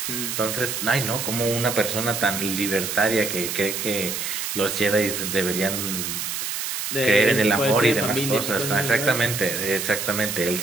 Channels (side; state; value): right; noise; hiss, 3 dB below the sound